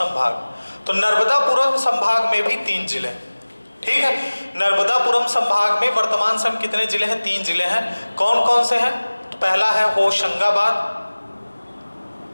तो नर्मदापुरम संभाग में भी 3 जिले। ठीक है, नर्मदापुरम संभाग में वर्तमान समय कितने जिले हैं? 3 जिले हैं। कौन कौन से हैं? तो पहला है होशंगाबाद,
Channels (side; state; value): both; inverted; correlation -1.00